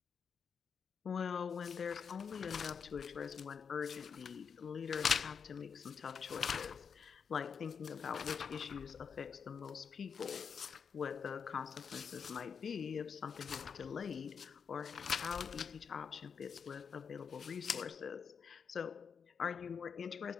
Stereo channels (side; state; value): right; quieter; 6.5 dB